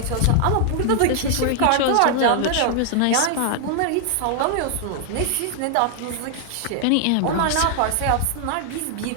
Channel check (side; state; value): both; different; correlation 0.00